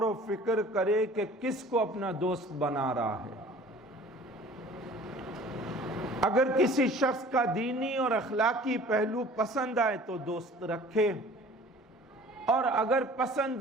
و فکر کرے کہ کس کو اپنا دوست بنا رہا ہے۔ اگر کسی شخص کا دینی اور اخلاقی پہلو پسند آئے تو دوست رکھے، اور اگر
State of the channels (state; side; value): normal; both; correlation 0.47